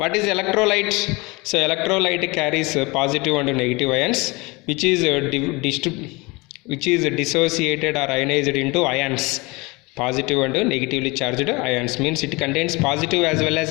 is electrolyte? So electrolyte carries positive and negative ions, which is dissociated or ionized into ions. Positive and negatively charged ions means it contains positive as well as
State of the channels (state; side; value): quieter; right; 25.3 dB